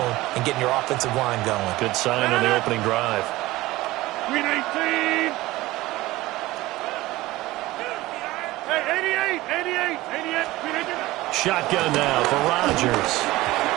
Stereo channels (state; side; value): quieter; left; 18.4 dB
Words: and getting your offensive line going. Good sign on the opening drive. Green 18! Hey, 88! Green 18! Shotgun now for Rodgers.